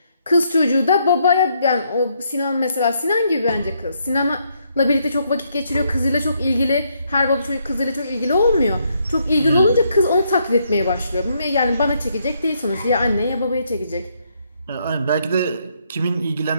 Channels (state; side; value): inverted; both; correlation -0.74